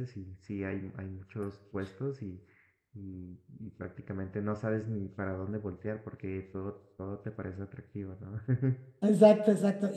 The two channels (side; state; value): both; identical; correlation 1.00